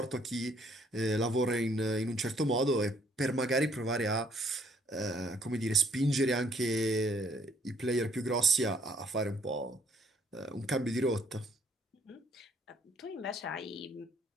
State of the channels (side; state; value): both; normal; correlation 0.65